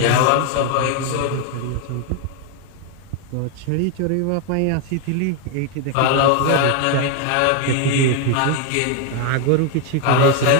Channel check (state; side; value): different; both; correlation 0.01